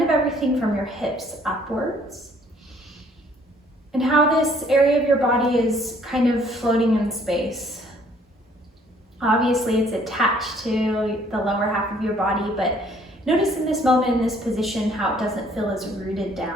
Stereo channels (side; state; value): both; normal; correlation 0.61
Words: of everything from your hips upwards. And how this area of your body is kind of floating in space. Obviously, it's attached to the lower half of your body, but notice in this moment, in this position, how it doesn't feel as rooted